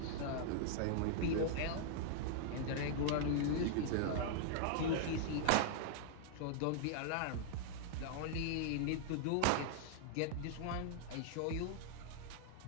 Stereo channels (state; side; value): different; both; correlation -0.01